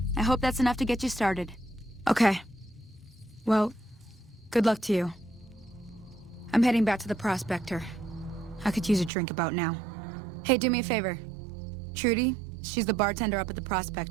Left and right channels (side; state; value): left; drops out; at 9.1 s